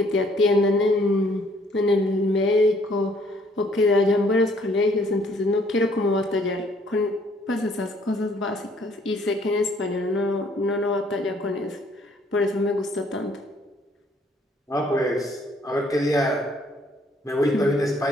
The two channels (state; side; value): normal; both; correlation 0.63